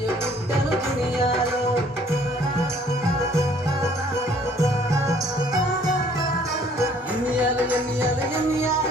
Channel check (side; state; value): both; normal; correlation 0.59